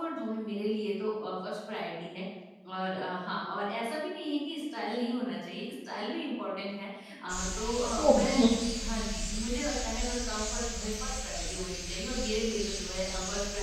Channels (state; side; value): identical; both; correlation 1.00